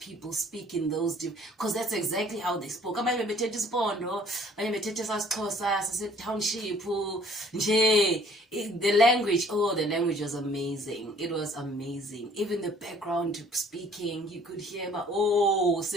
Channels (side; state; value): both; normal; correlation 0.57